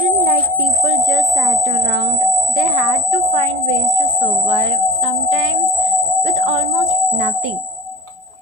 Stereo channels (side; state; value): left; late; 4.9 ms